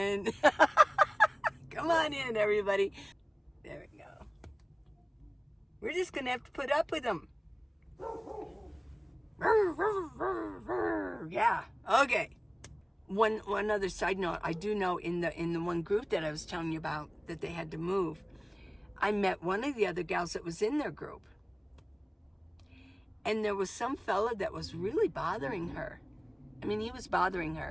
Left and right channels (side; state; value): both; identical; correlation 1.00